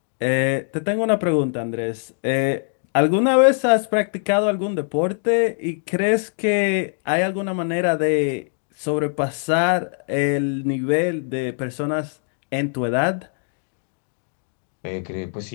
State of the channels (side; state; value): right; silent; 64 dB below the other